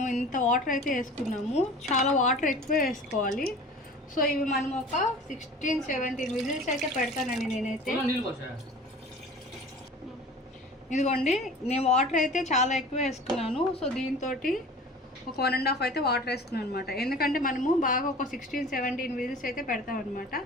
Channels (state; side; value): normal; both; correlation 0.41